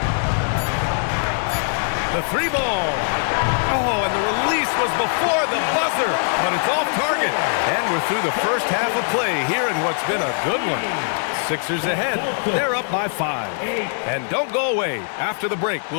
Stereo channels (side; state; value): right; silent; 61 dB below the other